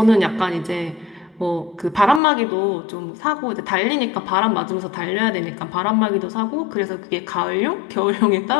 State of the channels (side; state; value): right; drops out; at 2.2 s